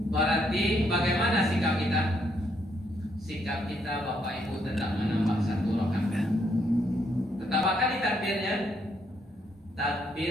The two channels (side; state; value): both; normal; correlation 0.74